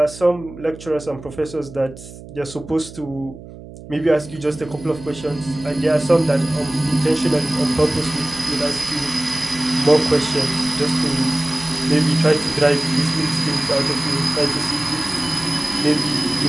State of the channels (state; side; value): noise; right; hum, 16 dB below the sound